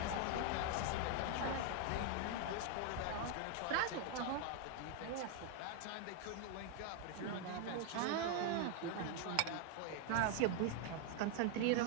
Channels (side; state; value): both; different; correlation 0.00